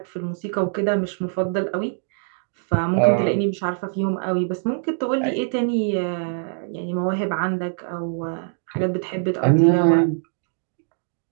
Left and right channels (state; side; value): silent; left; digital silence